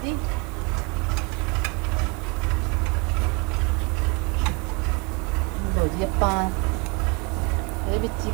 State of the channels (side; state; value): left; quieter; 28.5 dB